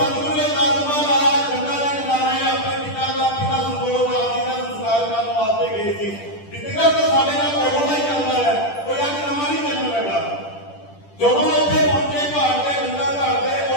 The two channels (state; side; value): late; right; 10 ms